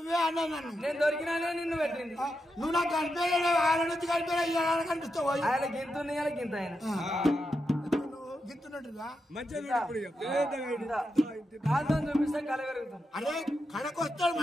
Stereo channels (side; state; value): both; normal; correlation 0.86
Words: అన్నా నన్ను నేను దొరికినానే నిన్ను పెట్టింది నువ్వు నాకు కనిపించలే వాళ్ళ నుంచి కనిపించలే కనిపిస్తావు ఆయన గింతుంది ఆయన గింత ఆయన గిత్తున్నట్టుగా కాదు చూపిస్తే కళ పెరుగుతాం అరే కడకొస్తాడు